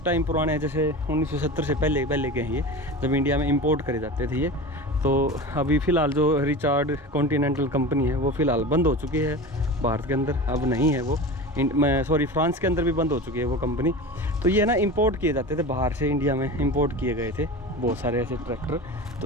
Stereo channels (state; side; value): normal; both; correlation 0.31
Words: पुराने हैं, जैसे 1970 से पहले के हैं ये, जब इंडिया में इंपोर्ट करे जाते थे ये। तो अभी फ़िलहाल जो रिचार्ड कॉन्टिनेंटल कंपनी है वो फ़िलहाल बंद हो चुकी है भारत के अंदर, अब नहीं है वो, फ्रांस के अंदर भी बंद हो चुकी है वो कंपनी। तो ये ना इंपोर्ट किए जाते थे बाहर से, इंडिया में इंपोर्ट किए गए थे बहुत सारे ऐसे ट्रैक्टर।